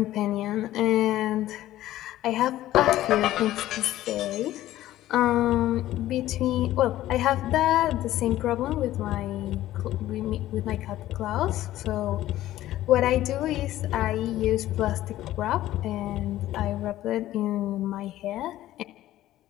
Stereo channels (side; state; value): right; quieter; 14.4 dB